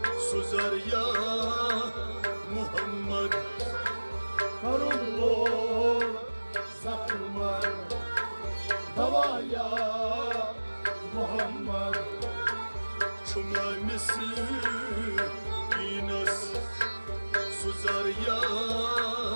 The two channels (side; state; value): both; inverted; correlation -1.00